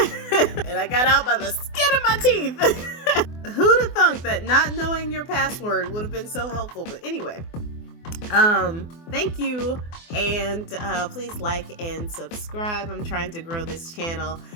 I got out by the skin of my teeth. Who'd have thunk that not knowing your password would have been so helpful? But anyway, thank you, and please like and subscribe. I'm trying to grow this channel,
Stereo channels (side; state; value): right; late; 24 ms